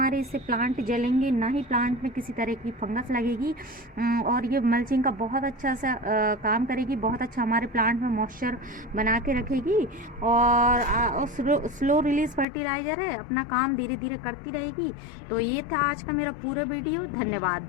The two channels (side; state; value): right; drops out; at 12.5 s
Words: इससे प्लांट जलेंगे, ना ही प्लांट में किसी तरह की फंगस लगेगी, और ये मल्चिंग का बहुत अच्छा सा काम करेगी, बहुत अच्छा हमारे प्लांट में मॉइस्चर बना के रखेगी। और स्लो रिलीज फर्टिलाइज़र है, अपना काम धीरे धीरे करती रहेगी। तो ये था आज का मेरा पूरा वीडियो। धन्यवाद